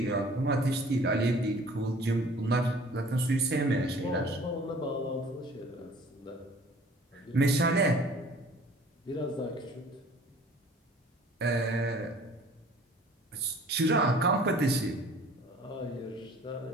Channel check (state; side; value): normal; both; correlation 0.50